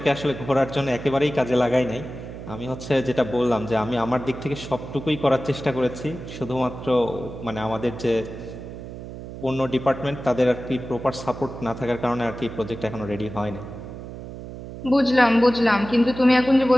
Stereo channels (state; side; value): noise; right; hum, 11 dB below the sound